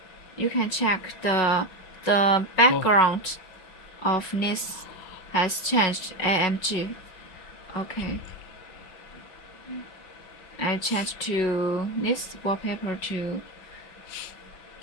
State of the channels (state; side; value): late; right; 5.2 ms